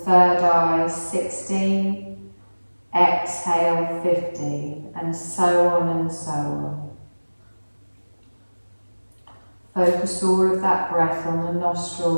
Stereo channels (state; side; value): inverted; both; correlation -1.00